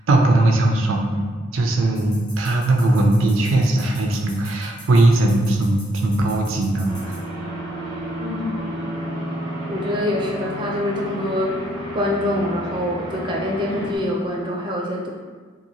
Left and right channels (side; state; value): both; normal; correlation 0.74